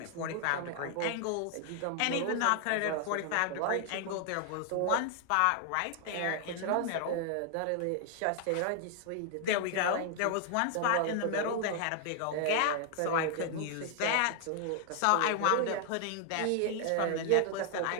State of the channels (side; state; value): both; different; correlation 0.00